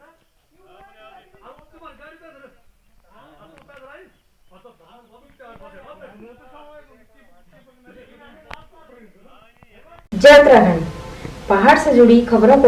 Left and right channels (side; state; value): both; identical; correlation 1.00